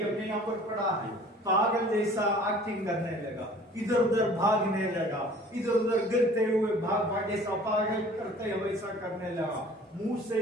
अपने यहाँ पर पड़ा है, पागल जैसा एक्टिंग करने लगा, इधर उधर भागने लगा, इधर उधर गिरते हुए भाग जैसा पागल करते हुए वैसा करने लगा, मुंह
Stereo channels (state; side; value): normal; both; correlation 0.49